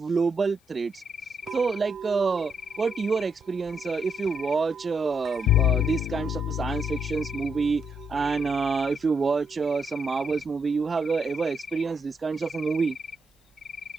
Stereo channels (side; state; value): both; normal; correlation 0.78